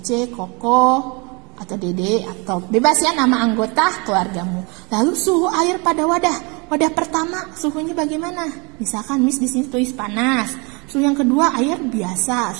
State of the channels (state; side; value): quieter; left; 29.6 dB